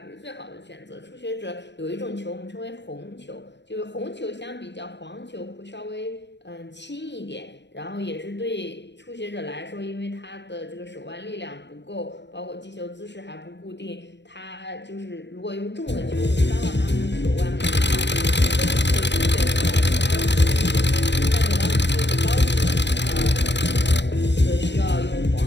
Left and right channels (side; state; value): right; late; 0.51 ms